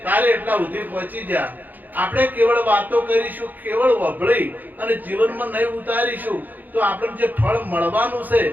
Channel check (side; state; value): left; late; 0.085 ms